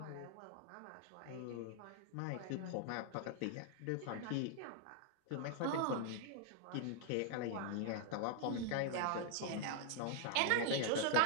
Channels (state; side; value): different; both; correlation 0.00